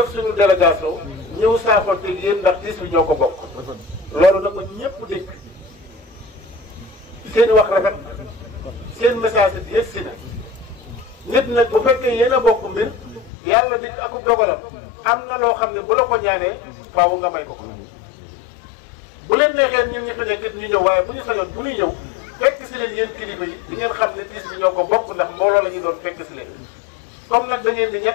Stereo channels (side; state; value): right; drops out; at 13.3 s